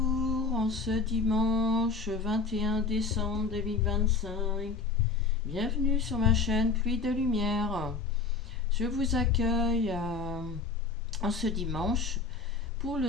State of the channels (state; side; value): quieter; right; 4.4 dB